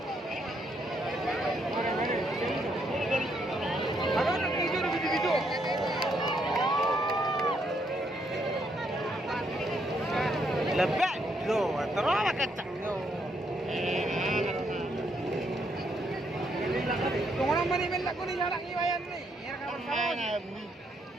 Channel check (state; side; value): normal; both; correlation 0.74